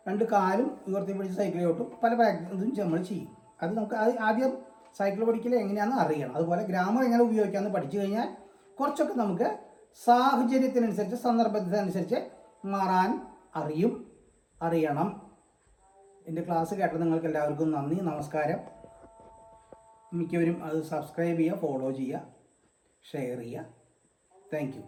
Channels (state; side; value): identical; both; correlation 1.00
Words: 2 കാലും ഉയർത്തി പിടിച്ച് സൈക്കിളെ ഓട്ടും. പല പ്രാക്ടീസും നമ്മൾ ചെയ്യും. അത് നമുക്ക് ആദ്യം സൈക്കിൾ പഠിക്കൽ എങ്ങനെയാണെന്ന് അറിയണം. അതുപോലെ ഗ്രാമർ എങ്ങനെ ഉപയോഗിക്കാമെന്ന് പഠിച്ചു കഴിഞ്ഞാൽ കുറച്ചൊക്കെ നമുക്ക് സാഹചര്യത്തിനനുസരിച്ച്, സന്ദർഭത്തിനനുസരിച്ച് മാറാൻ അറിയണം. എൻ്റെ ക്ലാസ് കേട്ട നിങ്ങൾക്ക് എല്ലാവർക്കും നന്ദി, നമസ്കാരം. മിക്കവരും അത് സബ്സ്ക്രൈബ് ചെയ്യുക, ഫോളോ ചെയ്യുക, ഷെയർ ചെയ്യുക. Thank you.